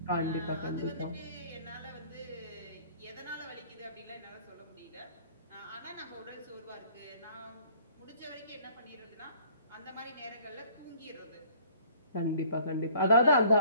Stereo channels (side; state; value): both; inverted; correlation -0.55